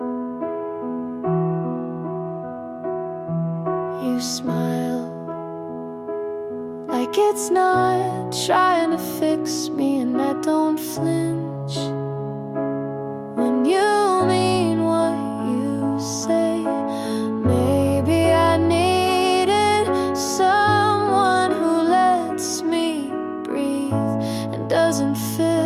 You smile like it's not trying to fix me, and I don't flinch when you mean what you say. Maybe I needed someone who lets me breathe and doesn't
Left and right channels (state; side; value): identical; both; correlation 1.00